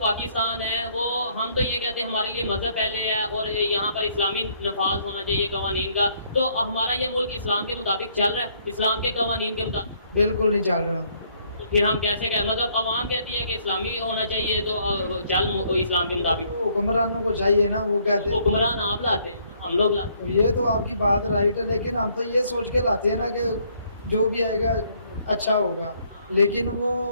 है वो, हम तो ये कहते हैं हमारे लिए मज़हब पहले है और यहाँ पर इस्लामी नफाज होना चाहिए कवानीन का, तो हमारा ये मुल्क इस्लाम के मुताबिक चल रहा है, इस्लाम के कवानीन के मुताबिक? बिल्कुल नहीं चल रहा। तो फिर हम कैसे कहें, मतलब आवाम कहती है कि इस्लामी होना चाहिए तो चल इस्लाम के मुताबिक। तो हुक्मरानों को चाहिए ना, वो कहते हैं। हुक्मरान आप लाते हैं, हम लोग लाते तो ये तो आपकी बात राइट है, लेकिन हम तो ये सोच के लाते हैं ना कि जो भी आएगा अच्छा होगा, लेकिन वो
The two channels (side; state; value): both; inverted; correlation -0.66